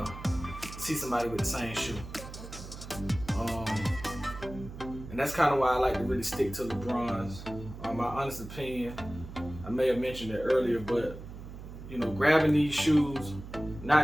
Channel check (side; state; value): right; noise; hum, 12 dB below the sound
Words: see somebody with the same shoe. And that's kind of why I like to really stick to LeBron's. My honest opinion, I may have mentioned it earlier, but you know, grabbing these shoes,